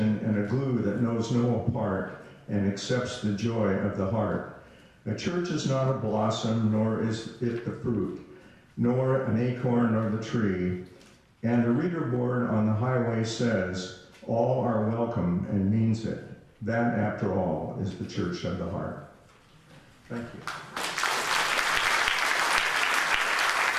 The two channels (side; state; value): both; identical; correlation 1.00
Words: and a glue that knows no apart and accepts the joy of the heart. A church is not a blossom, nor is it the fruit, nor an acorn or the tree. And the reader board on the highway says, all are welcome, and means it. That, after all, is the church of the heart. Thank you.